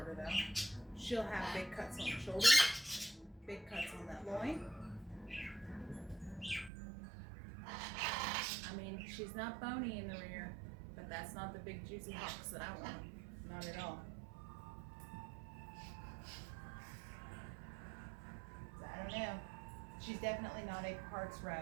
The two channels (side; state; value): left; drops out; at 6.7 s